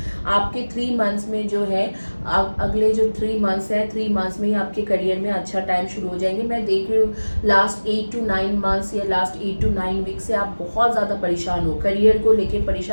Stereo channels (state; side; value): inverted; both; correlation -1.00